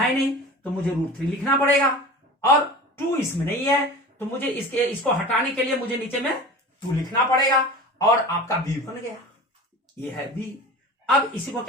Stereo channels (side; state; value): both; normal; correlation 0.36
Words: नहीं, तो मुझे √3 लिखना पड़ेगा, और 2 इसमें नहीं है, तो मुझे इसको हटाने के लिए मुझे नीचे में 2 लिखना पड़ेगा, और आपका b बन गया, ये है b। अब इसी को